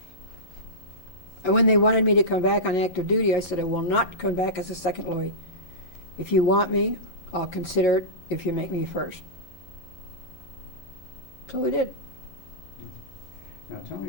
And when they wanted me to come back on active duty, I said, I will not come back as a second Louis. If you want me, I'll consider it if you make me first. So we did. Now tell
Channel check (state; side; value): late; right; 11 ms